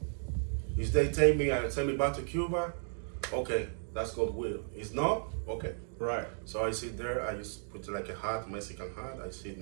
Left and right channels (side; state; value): left; silent; digital silence